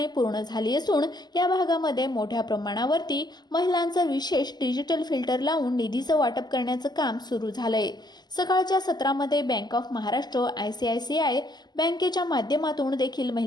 पूर्ण झाली असून या भागामध्ये मोठ्या प्रमाणावरती महिलांचं विशेष डिजिटल फिल्टर लावून निधीचं वाटप करण्याचं काम सुरू झालंय। सकाळच्या सत्रामध्ये बँक ऑफ महाराष्ट्र ICICI बँकेच्या माध्यमातून देखील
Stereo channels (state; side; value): late; right; 0.21 ms